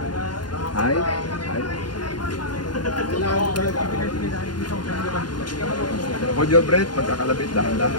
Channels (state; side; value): late; right; 0.71 ms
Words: High. Hold your breath, pagkakalabit,